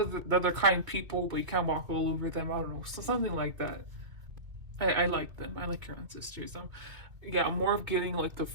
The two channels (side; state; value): left; late; 2.5 ms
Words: they're kind people, but you can't walk all over them. I don't know, so something like that. I like them. I like your ancestors. Yeah, I'm more of getting like the